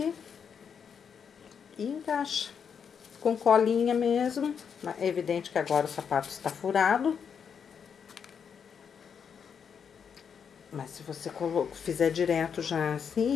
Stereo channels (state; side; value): quieter; right; 7.0 dB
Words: e encaixa. Com colinha mesmo. É evidente que agora o sapato está furado. Mas se você fizer direto já